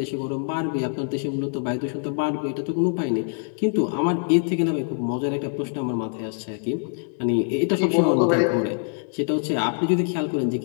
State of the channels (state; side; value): silent; right; 55 dB below the other